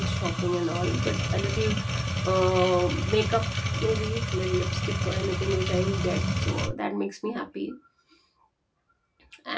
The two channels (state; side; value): identical; both; correlation 1.00